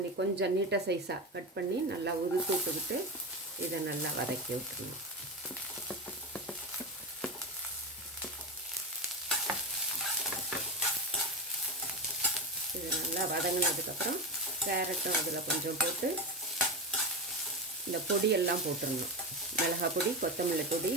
கொஞ்சம் நீட்டாக சைஸாக கட் பண்ணி நல்லா உதுத்து விட்டுக்கிட்டு இதை நல்லா வதக்கி விட்டுருணும். இது நல்லா வதங்கினதுக்கப்புறம் கேரட்டும் அதில் கொஞ்சம் போட்டு இந்த பொடியெல்லாம் போட்டுடணும். மிளகாய் பொடி, கொத்தமல்லி பொடி,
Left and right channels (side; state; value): both; normal; correlation 0.17